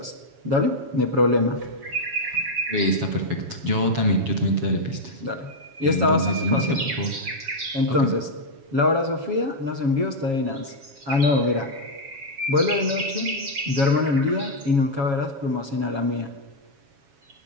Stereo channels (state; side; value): late; left; 7.2 ms